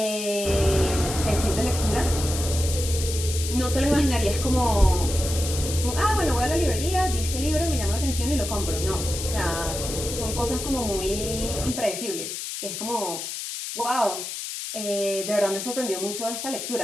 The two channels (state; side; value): noise; left; hiss, 6 dB below the sound